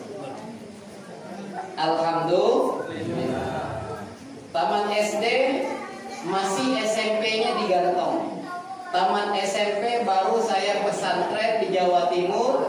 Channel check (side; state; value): both; identical; correlation 1.00